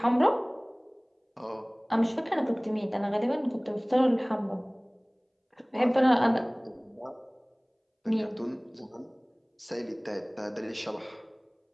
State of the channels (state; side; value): identical; both; correlation 1.00